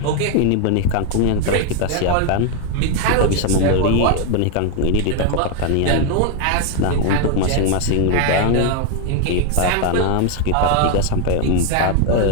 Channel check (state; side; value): different; both; correlation 0.01